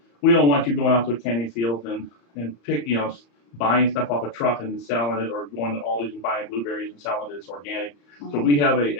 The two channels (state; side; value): late; right; 34 ms